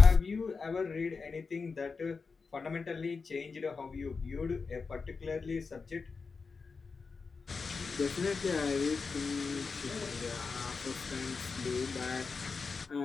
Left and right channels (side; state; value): right; quieter; 4.8 dB